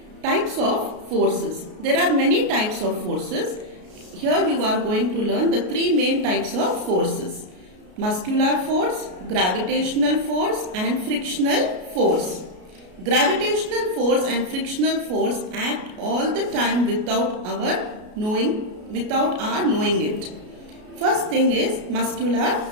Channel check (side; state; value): left; late; 33 ms